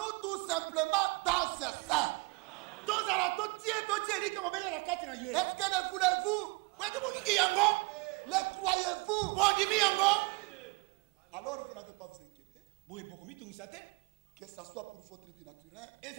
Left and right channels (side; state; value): left; quieter; 29.0 dB